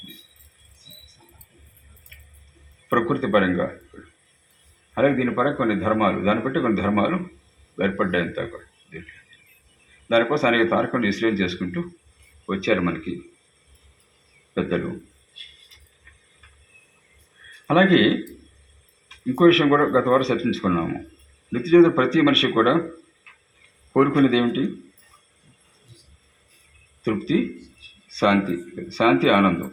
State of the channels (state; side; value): identical; both; correlation 1.00